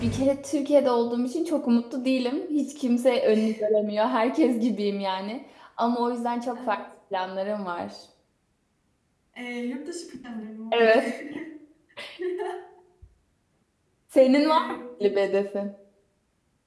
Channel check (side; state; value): both; identical; correlation 1.00